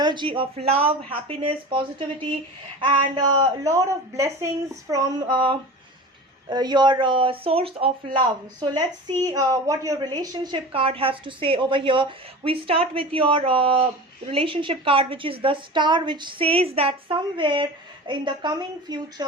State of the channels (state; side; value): normal; both; correlation 0.33